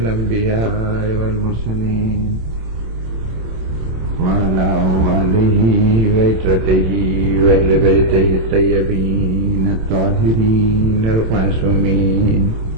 والمرسلين وعلى آله وعترته وأهل بيته الطيبين الطاهرين المعصومين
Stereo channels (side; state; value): left; late; 27 ms